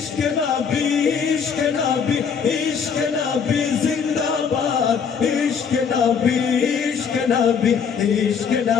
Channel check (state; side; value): quieter; right; 6.6 dB